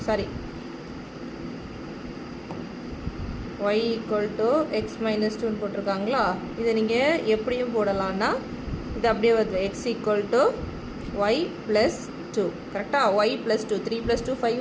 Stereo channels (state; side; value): identical; both; correlation 1.00